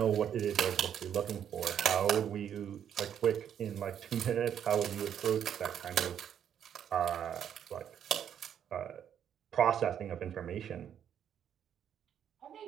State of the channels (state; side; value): quieter; left; 9.1 dB